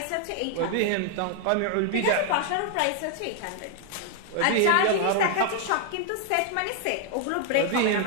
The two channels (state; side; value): different; both; correlation 0.00